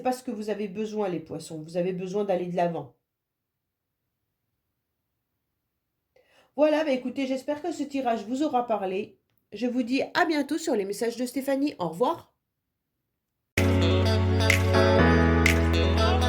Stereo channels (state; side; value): identical; both; correlation 1.00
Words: pas ce que vous avez besoin, les poissons. Vous avez besoin d'aller de l'avant. Voilà, bah écoutez, j'espère que ce tirage vous aura parlé. Je vous dis à bientôt sur les messages de Stéphanie. Au revoir.